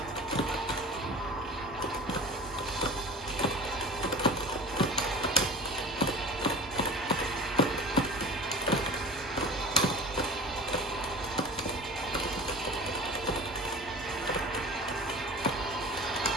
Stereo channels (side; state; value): both; normal; correlation 0.36